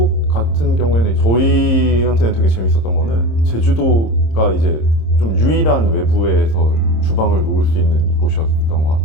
같은 경우에는 저희한테는 되게 재밌었던 거는 제주도가 이제 좀 유일한 외부에서 주방을 놓을 수 있는 곳이었던 것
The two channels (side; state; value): right; late; 26 ms